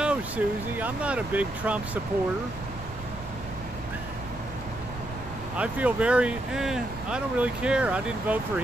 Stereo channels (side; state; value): right; noise; rumble, 12 dB below the sound